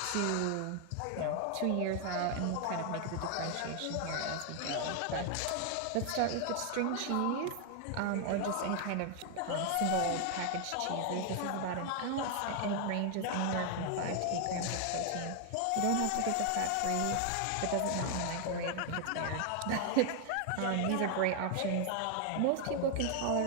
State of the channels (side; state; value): both; different; correlation 0.00